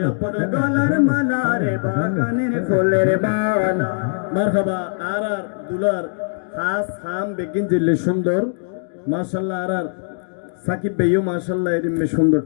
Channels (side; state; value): right; silent; digital silence